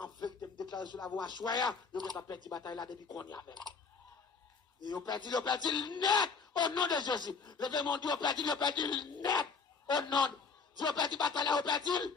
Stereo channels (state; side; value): quieter; right; 5.2 dB